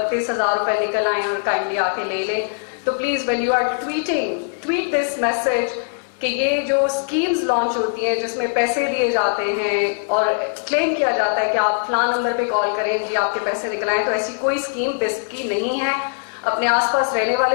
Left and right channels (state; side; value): silent; right; 59 dB below the other